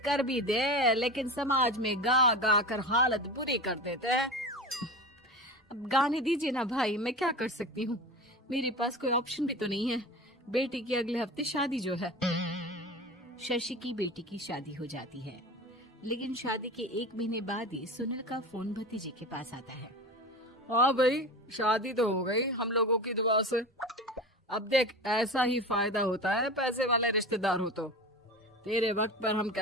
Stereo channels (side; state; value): both; normal; correlation 0.31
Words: कर भी दे लेकिन समाज में गा गा कर हालत बुरी कर देते हैं। अब गाने दीजिए ना भाई, मैं क्या कर सकती हूँ, मेरे पास कोई ऑप्शन भी तो नहीं है। बेटी की अगले हफ्ते शादी जो है। शशि की बेटी की शादी हो जाती है, लेकिन शादी के 1 महीने बाद ही सुनील का फोन भतीजे के पास आता है। हाँ भाई, शादी तो हो गई हम लोगों की दुआ से। अब देख, ऐसा ही फायदा होता है पैसे वाले रिश्तेदार हो तो। तेरे वक्त पर हम